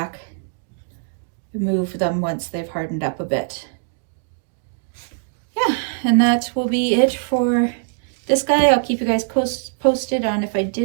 and move them once they've hardened up a bit. Yeah, and that will be it for this guy. I'll keep you guys posted on if I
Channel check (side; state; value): left; silent; digital silence